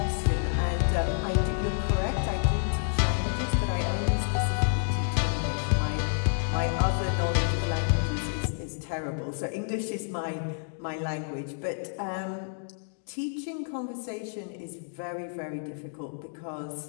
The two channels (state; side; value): silent; right; digital silence